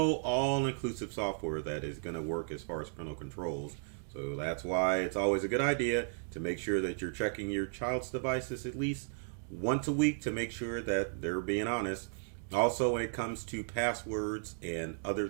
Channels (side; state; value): left; silent; digital silence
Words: all-inclusive software that is going to work as far as parental controls. So that's why it's always a good idea to make sure that you're checking your child's devices at least once a week to make sure that they're being honest. Also, when it comes to passwords and other